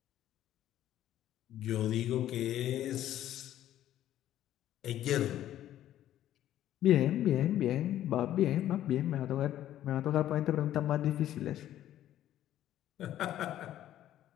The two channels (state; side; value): quieter; right; 12.4 dB